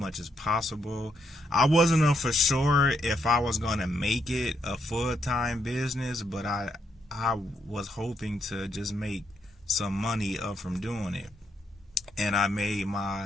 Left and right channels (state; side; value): normal; both; correlation 0.77